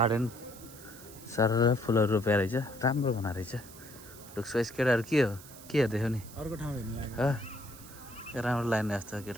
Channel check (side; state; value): right; noise; hiss, 18 dB below the sound